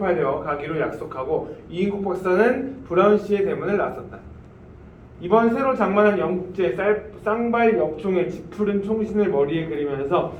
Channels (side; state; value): both; identical; correlation 1.00